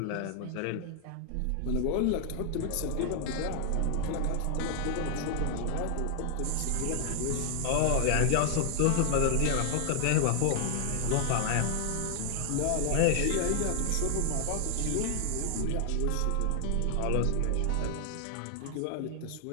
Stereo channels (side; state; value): both; different; correlation 0.00